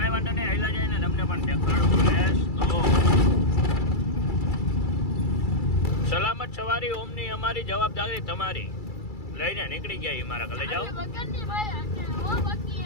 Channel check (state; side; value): late; right; 2.3 ms